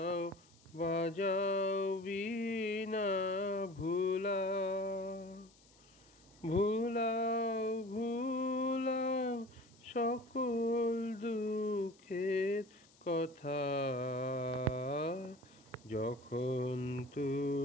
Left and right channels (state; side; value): noise; left; hiss, 28 dB below the sound